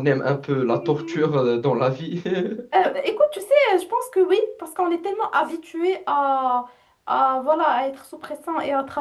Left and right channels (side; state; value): both; identical; correlation 1.00